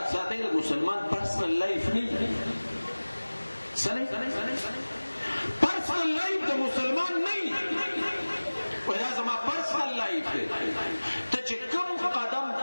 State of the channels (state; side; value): inverted; both; correlation -1.00